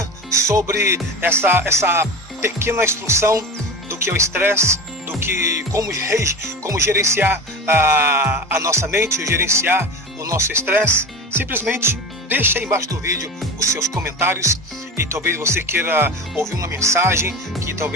sobre essa pequena instrução do que é o estresse, do que como gerenciar a nossa mente, gerenciar o nosso estresse, simplesmente deixa aí embaixo do vídeo os seus comentários, e talvez você queira ouvir uma mensagem que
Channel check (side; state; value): both; normal; correlation 0.29